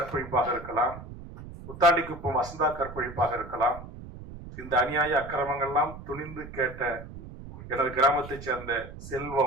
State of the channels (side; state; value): right; noise; rumble, 13 dB below the sound